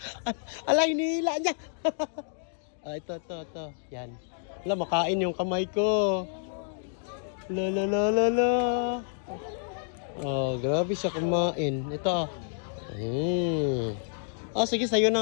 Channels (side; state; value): right; silent; digital silence